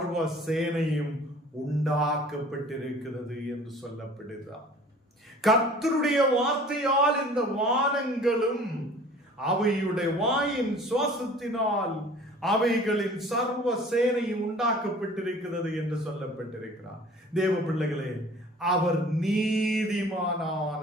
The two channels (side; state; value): both; normal; correlation 0.48